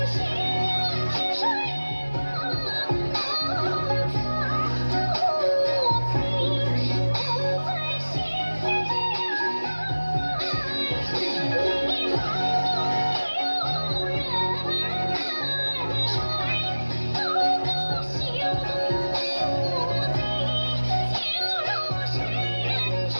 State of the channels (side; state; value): both; inverted; correlation -1.00